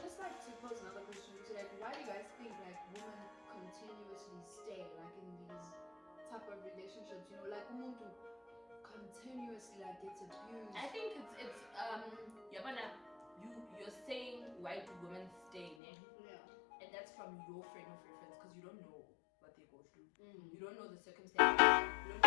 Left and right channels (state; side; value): drops out; right; at 15.8 s